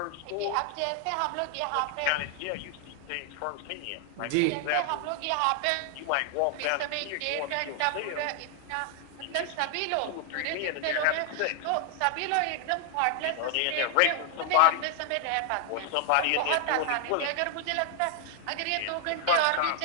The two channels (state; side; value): different; both; correlation 0.00